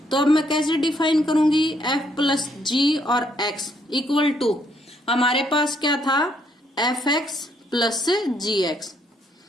तो अब मैं कैसे डिफाइन करूंगी, f+g और x इक्वल टू, हमारे पास क्या था fx प्लस gx।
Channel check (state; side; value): normal; both; correlation 0.71